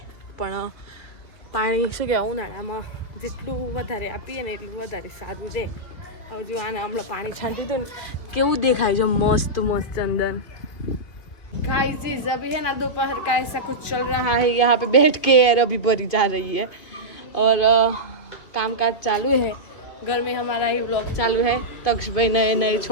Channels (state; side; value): late; right; 2.5 ms